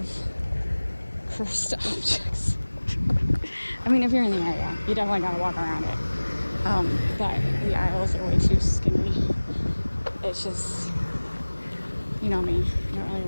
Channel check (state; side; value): inverted; both; correlation -1.00